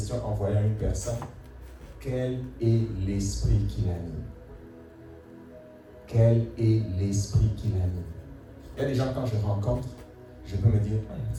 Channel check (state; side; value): identical; both; correlation 1.00